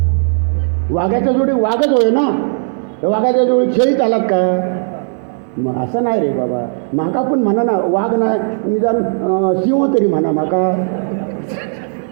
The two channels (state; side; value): silent; left; digital silence